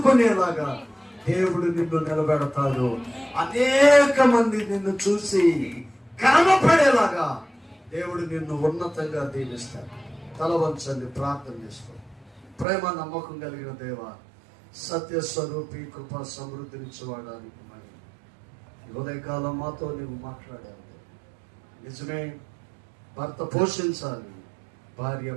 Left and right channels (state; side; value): drops out; left; at 12.7 s